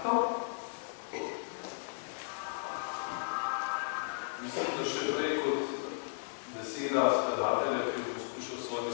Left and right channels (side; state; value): right; silent; digital silence